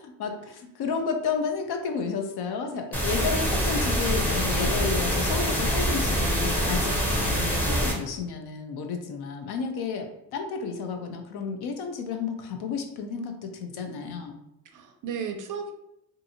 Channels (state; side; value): normal; both; correlation 0.30